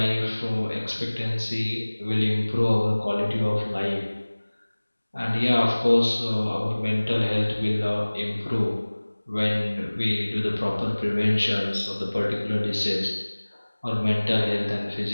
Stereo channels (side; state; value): both; inverted; correlation -1.00